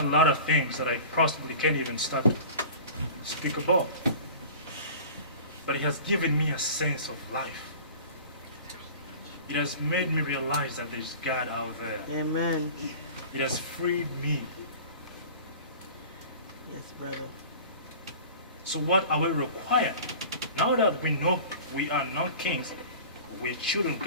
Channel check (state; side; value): inverted; both; correlation -0.40